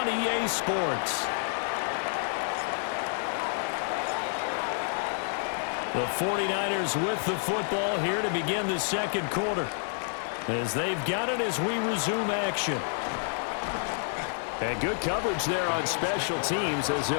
EA Sports. The 49ers with the football here to begin the second quarter, as they've got it as we resume action. And good coverage there on special teams as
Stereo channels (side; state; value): right; silent; digital silence